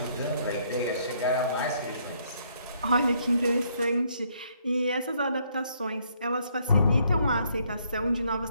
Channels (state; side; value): inverted; both; correlation -0.69